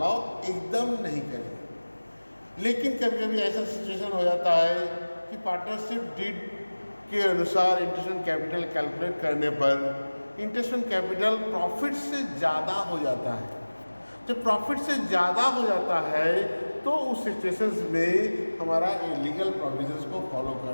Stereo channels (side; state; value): both; inverted; correlation -1.00